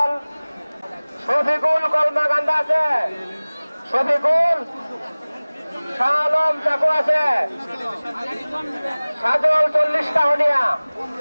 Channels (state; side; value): inverted; both; correlation -0.99